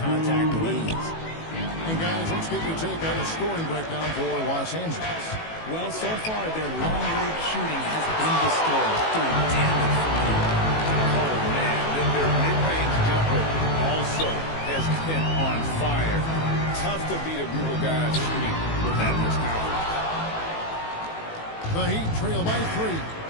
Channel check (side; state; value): right; late; 18 ms